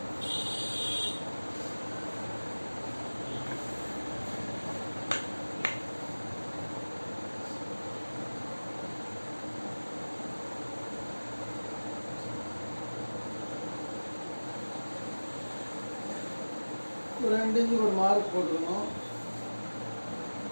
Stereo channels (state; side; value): inverted; both; correlation -1.00